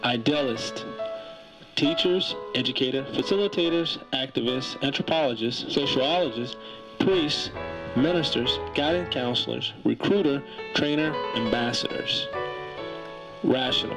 Idealist: teachers, educators, facilitators, activists, anthropologists, sociologists, priests, ministers, guidance counselors, recruiter, trainer, ambassadors.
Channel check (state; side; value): identical; both; correlation 1.00